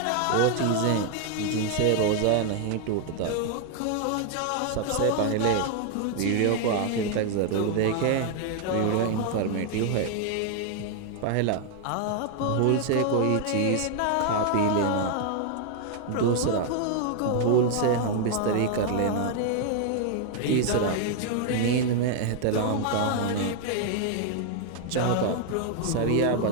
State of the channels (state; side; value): different; both; correlation 0.00